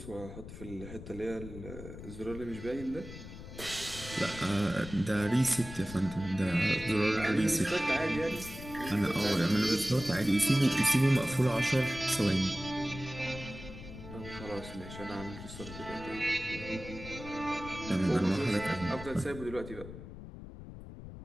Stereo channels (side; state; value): left; noise; rumble, 12 dB below the sound